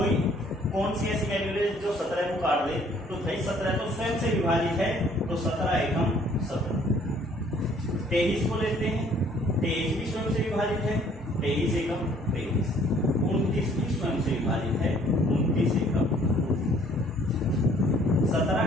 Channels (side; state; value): both; normal; correlation 0.59